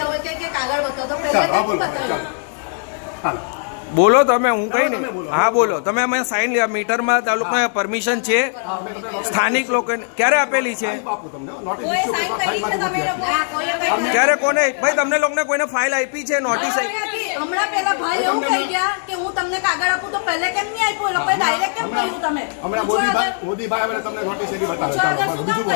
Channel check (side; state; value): right; silent; digital silence